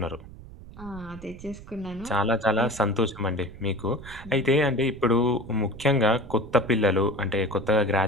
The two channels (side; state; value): right; noise; rumble, 16 dB below the sound